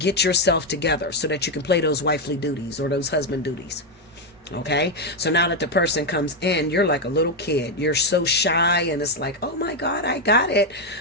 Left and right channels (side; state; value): both; normal; correlation 0.04